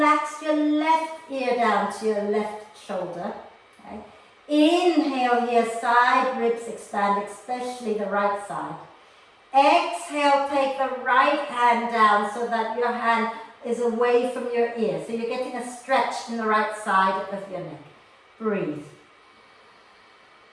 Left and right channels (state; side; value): identical; both; correlation 1.00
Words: your left ear down to your left shoulder. Okay. Inhale here, side ribs expand, especially the right side. Exhale, take the right hand down so that your hand is away from your ear. So you're getting a stretch in the right side of your neck. Breathe.